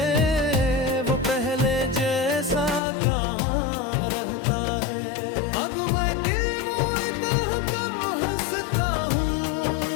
वो पहले जैसा कहाँ रहता है। अब मैं दिल मोड़ता कम हंसता हूँ,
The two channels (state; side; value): drops out; right; at 2.8 s